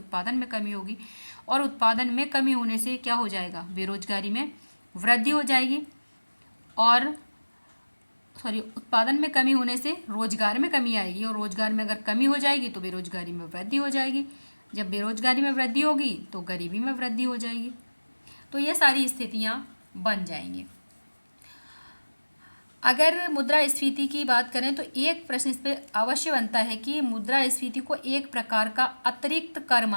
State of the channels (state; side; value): inverted; both; correlation -1.00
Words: में कमी होगी, और उत्पादन में कमी होने से क्या हो जाएगा, बेरोजगारी में वृद्धि हो जाएगी, और उत्पादन में कमी होने से रोजगार में कमी आएगी, और रोजगार में अगर कमी हो जाएगी तो बेरोजगारी में वृद्धि हो जाएगी, जब बेरोजगारी में वृद्धि होगी तो गरीबी में वृद्धि हो जाएगी। तो ये सारी स्थितियाँ बन जाएंगी। अगर मुद्रास्फीति की बात करें तो एक प्रश्न इस पर अवश्य बनता है कि मुद्रास्फीति को एक प्रकार का अतिरिक्त कर